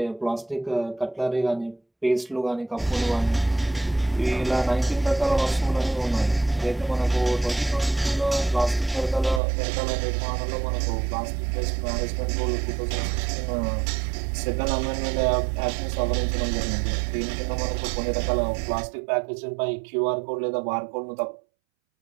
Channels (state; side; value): drops out; left; at 9.4 s